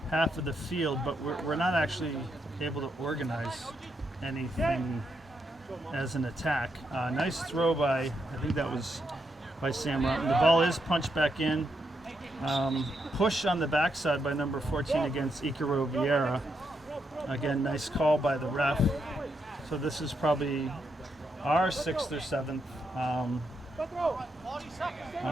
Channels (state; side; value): normal; both; correlation 0.81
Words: half of the field, but we're not actually able to organize anything as an attack. Nice throw by, I think that was by Sam Rotman. The ball is punched back in. Push on the backside by number 14 against Ikaro Vieira. Again, nice call by the ref. So this is probably our 6th or 7th.